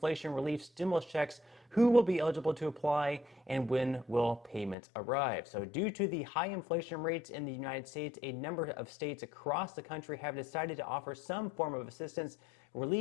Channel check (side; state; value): right; drops out; at 4.8 s